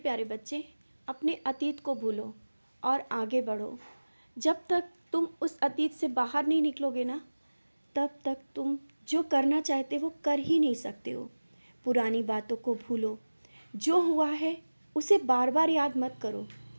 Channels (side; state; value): both; inverted; correlation -1.00